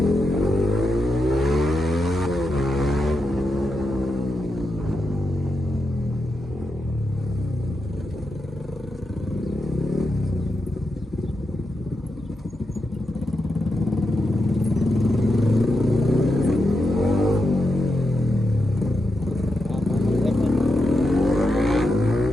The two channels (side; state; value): both; normal; correlation 0.86